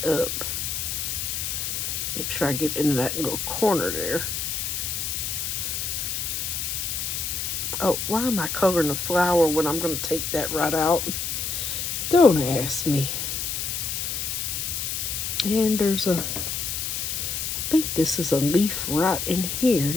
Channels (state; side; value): noise; left; hiss, 2 dB below the sound